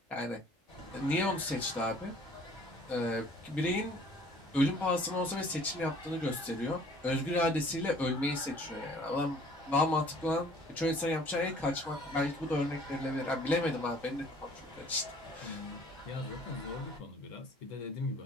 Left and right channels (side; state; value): both; normal; correlation 0.54